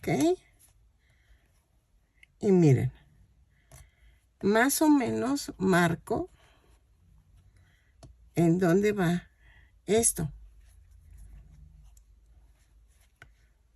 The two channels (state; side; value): identical; both; correlation 1.00